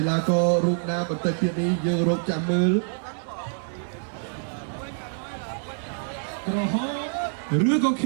ឡាកររូបណាបន្តិចទៀតនេះយើងរកចាំមើលក្រហមឬក៏ខ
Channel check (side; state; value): left; silent; digital silence